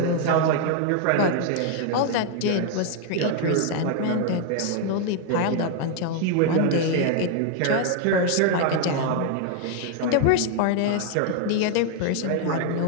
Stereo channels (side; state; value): both; different; correlation 0.00